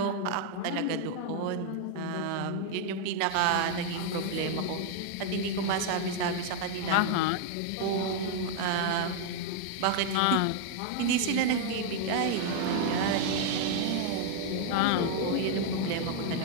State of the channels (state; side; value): different; both; correlation 0.00